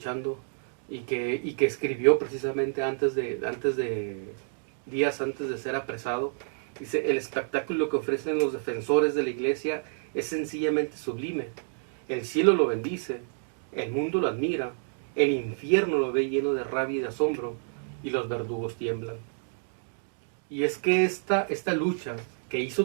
y que escribió precisamente días antes de ser apresado, dice: el espectáculo que ofrecen los defensores de la iglesia es sencillamente sublime. El cielo lo bendice, el mundo lo admira, el infierno lo ve lleno de rabia y de asombro, y los verdugos tiemblan. Y es que esta lucha que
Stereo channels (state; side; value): silent; left; digital silence